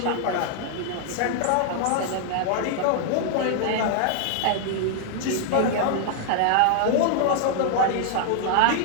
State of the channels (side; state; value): both; different; correlation -0.01